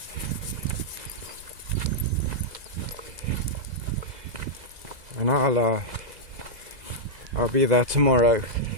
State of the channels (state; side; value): late; left; 2.0 ms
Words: And I'll be there tomorrow.